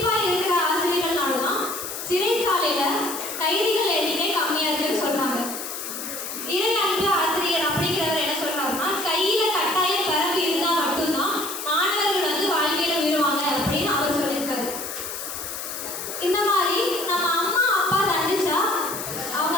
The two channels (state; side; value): noise; left; hiss, 7 dB below the sound